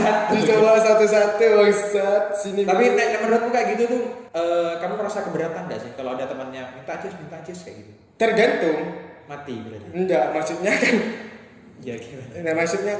Dicoba satu-satu bangsat sini. Tapi menurutmu kayak gitu tuh kamu merasa keberatan nggak sih kalau ada temannya minta cis kayak gitu? Tergantung. Mati berarti. Enggak, maksudnya kan Ya gimana? nah, maksudnya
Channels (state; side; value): identical; both; correlation 1.00